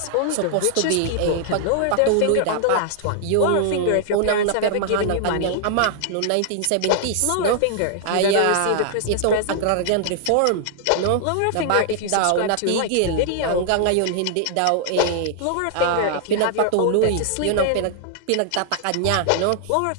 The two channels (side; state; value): both; different; correlation 0.00